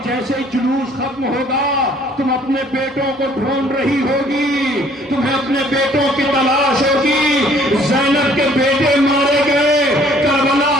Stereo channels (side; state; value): both; normal; correlation 0.59